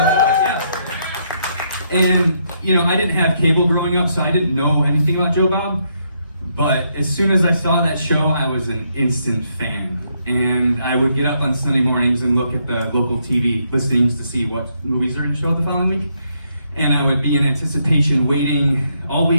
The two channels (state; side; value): inverted; both; correlation -0.76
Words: And you know, I didn't have cable growing up, so I didn't know anything about Joe Bob. But as soon as I saw that show, I was an instant fan. And I would get up on Sunday mornings and look at the local TV listings to see what movies are going to show the following week. And I would be in anticipation, waiting all